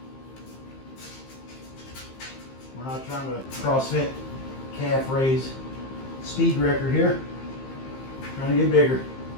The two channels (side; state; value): right; late; 15 ms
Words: We're not trying to CrossFit calf raise speed record here. Trying to get bigger,